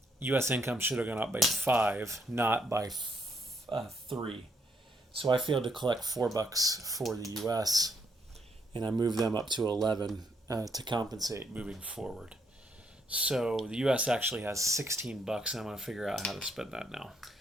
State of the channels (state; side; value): normal; both; correlation 0.73